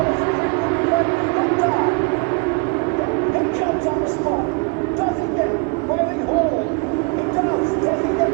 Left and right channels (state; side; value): quieter; left; 30.9 dB